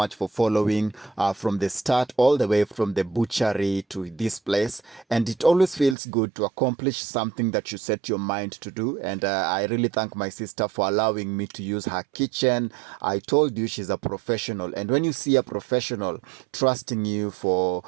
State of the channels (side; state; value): left; drops out; at 6.0 s